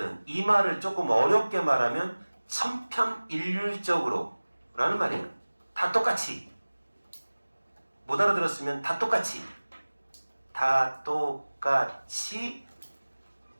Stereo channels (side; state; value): both; inverted; correlation -1.00